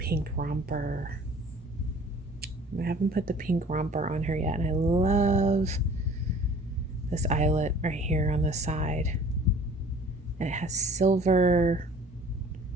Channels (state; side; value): normal; both; correlation 0.49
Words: romper. I haven't put the pink romper on her yet, and I love this eyelet right here on the side. And it has silver,